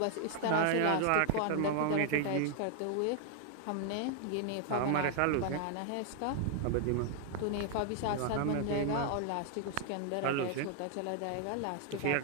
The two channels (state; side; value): different; both; correlation 0.00